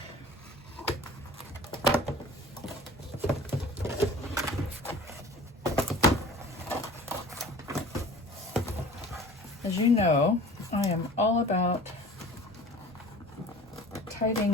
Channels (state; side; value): normal; both; correlation 0.42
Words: As you know, I am all about